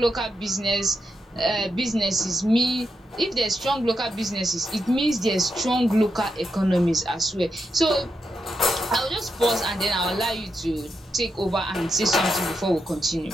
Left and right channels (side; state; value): both; normal; correlation 0.85